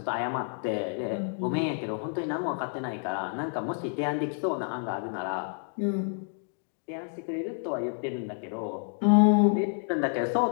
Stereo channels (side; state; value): right; silent; 58 dB below the other